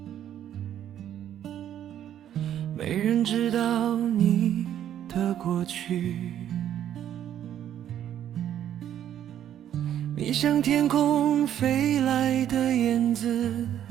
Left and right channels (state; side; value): quieter; left; 10.7 dB